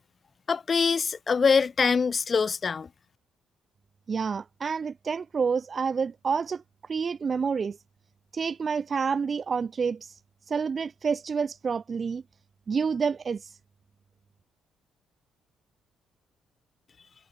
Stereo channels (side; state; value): both; normal; correlation 0.84